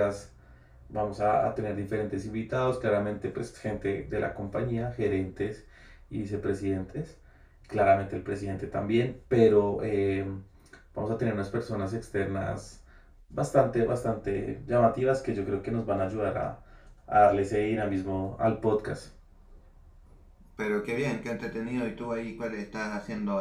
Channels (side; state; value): both; identical; correlation 1.00